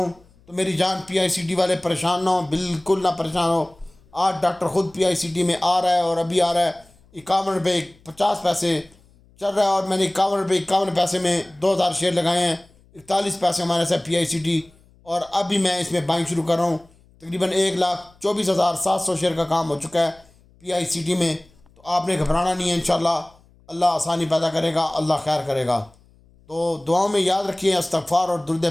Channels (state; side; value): noise; left; hum, 30 dB below the sound